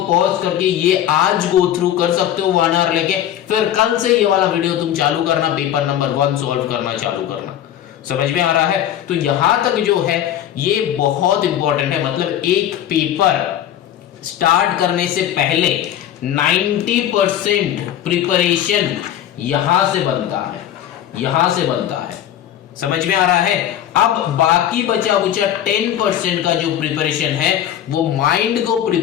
पॉज करके ये आज गो थ्रू कर सकते हो 1 आवर लेके, फिर कल से ये वाला वीडियो तुम चालू करना, पेपर नंबर 1 सॉल्व करना चालू करना। समझ में आ रहा है? तो यहां तक जो है ये बहुत इंपॉर्टेंट है, मतलब एक पेपर स्टार्ट करने से पहले 90% प्रिपरेशन यहां से बनता है, समझ में आ रहा है? अब बाकी बचा 10% का जो प्रिपरेशन है वो माइंड को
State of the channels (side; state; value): right; quieter; 11.1 dB